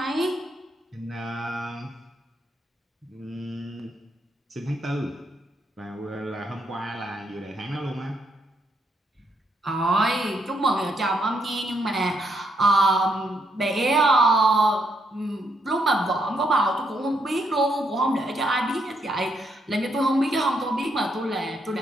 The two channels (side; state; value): both; normal; correlation 0.76